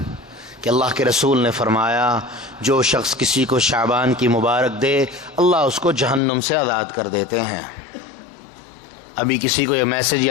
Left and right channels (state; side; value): drops out; right; at 6.2 s